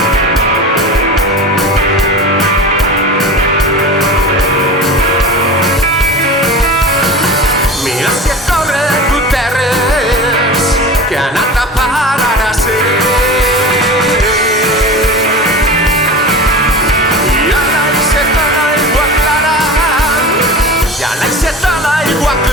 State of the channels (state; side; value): normal; both; correlation 0.32